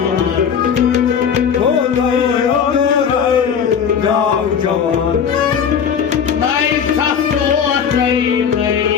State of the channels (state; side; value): quieter; right; 7.3 dB